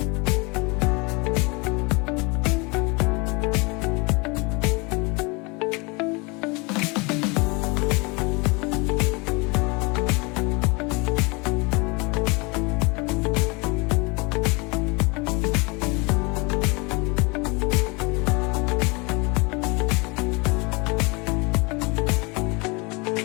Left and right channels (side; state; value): right; quieter; 28.3 dB